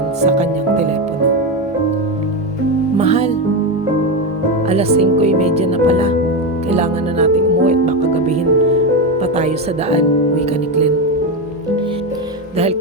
sa kanyang telepono. "Mahal, alas 5:30 na pala. Kailangan na nating umuwi at baka gabihin pa tayo sa daan," wika ni Glenn. Dahil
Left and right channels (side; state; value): both; normal; correlation 0.13